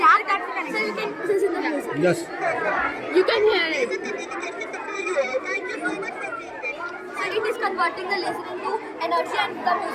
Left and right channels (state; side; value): identical; both; correlation 1.00